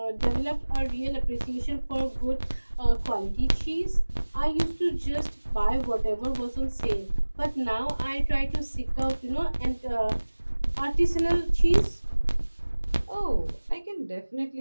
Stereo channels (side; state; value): both; inverted; correlation -1.00